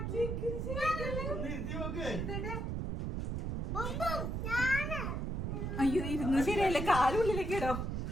ഒന്ന് ഇരുത്തി നോക്ക്. അയ്യോ ഇരുന്നു ശരിയല്ലേ, കാലുള്ളിലേക്ക് ഇടോ.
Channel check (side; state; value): right; noise; rumble, 2 dB below the sound